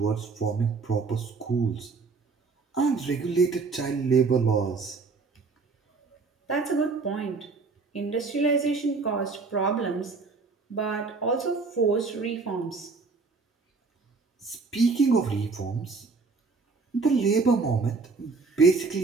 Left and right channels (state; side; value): quieter; left; 4.3 dB